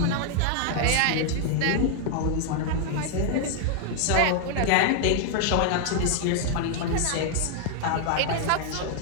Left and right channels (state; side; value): different; both; correlation 0.00